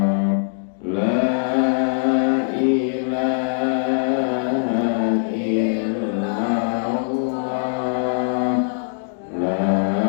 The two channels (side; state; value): right; silent; digital silence